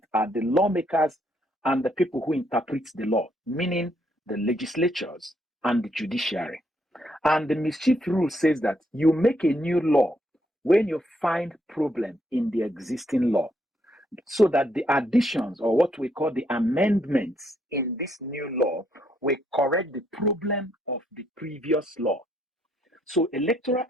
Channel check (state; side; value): normal; both; correlation 0.73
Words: are the lawmakers and the people who interpret the law, meaning the legislatures and the judiciary. And the mischief rule says that you make a new law when you find problem in the existing law, so that the additions, or what we call the amendments in this new law, will correct the problem of the previous law. So Electoral